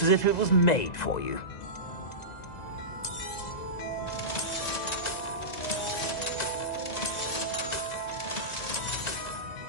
as if it was made for you.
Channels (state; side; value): late; right; 2.0 ms